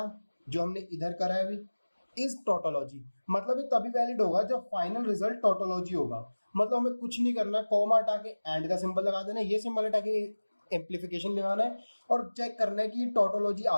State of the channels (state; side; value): inverted; both; correlation -1.00